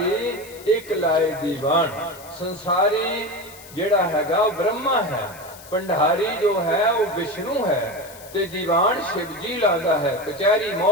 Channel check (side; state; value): left; noise; hiss, 19 dB below the sound